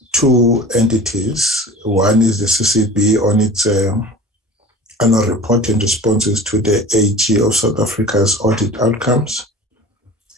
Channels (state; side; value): normal; both; correlation 0.39